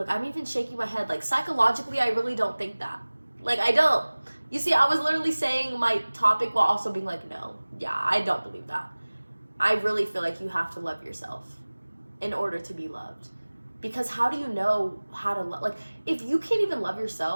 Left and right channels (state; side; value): inverted; both; correlation -1.00